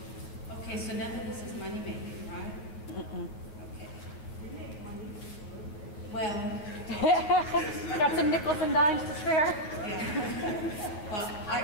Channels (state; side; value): late; right; 9.7 ms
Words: Okay, so none of this is money making, right? Okay. Well. Got some nickels and dimes to spare? Yeah. Well, I